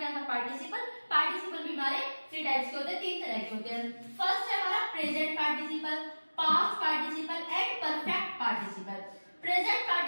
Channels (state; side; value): inverted; both; correlation -1.00